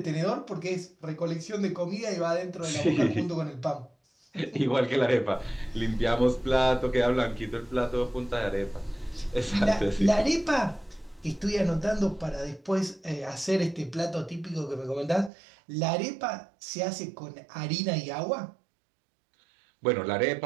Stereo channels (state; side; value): drops out; left; at 15.3 s